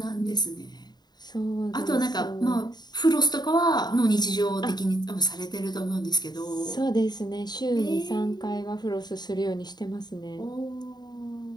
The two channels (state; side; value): late; right; 0.20 ms